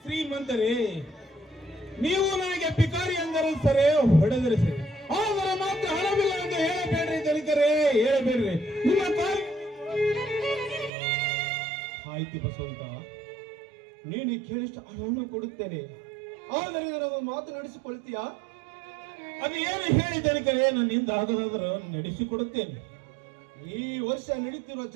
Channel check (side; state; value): left; drops out; at 10.9 s